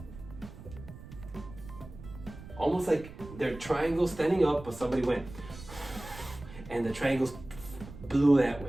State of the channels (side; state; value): right; noise; rumble, 15 dB below the sound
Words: Almost like they're triangles standing up, but somebody went, and the triangles blew that